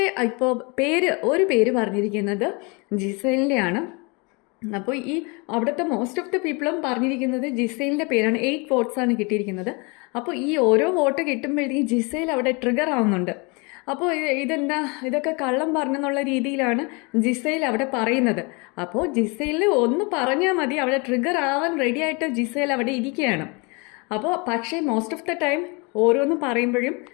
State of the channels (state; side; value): quieter; right; 29.8 dB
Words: ഇപ്പോൾ ഒരു പേര് പറഞ്ഞിരിക്കുന്നത് ജിസേലിൻ്റെയാണ്. അപ്പോൾ ഈ അവിടുത്തെ മോസ്റ്റ് ഓഫ് ദ പീപ്പിളും പറഞ്ഞിരിക്കുന്നത് ജിസേലിൻ്റെ പേരാണ്. 8 വോട്ട്സാണ് കിട്ടിയിരിക്കുന്നത്. അപ്പോൾ ഈ ഓരോ വോട്ട് കിട്ടുമ്പോഴത്തേക്കും ജിസേൽ അവിടെ ട്രിഗർ ആവുന്നുണ്ട്. അപ്പോൾ ഇതൊക്കെ കള്ളം പറഞ്ഞെന്നുള്ള രീതിയിലാണ് ജിസേൽ അവിടെ പറയുന്നത്. അപ്പോൾ ജിസേലിന് ഒന്ന് പറഞ്ഞാൽ മതി, അവിടെ ട്രിഗർ ആവാൻ റെഡി ആയിട്ട് ജിസേൽ അവിടെ ഇരിക്കുകയാണ്. അപ്പോൾ പക്ഷേ മോസ്റ്റ് ഓഫ് ദ ടൈം ഓരോന്ന് പറയുമ്പോഴും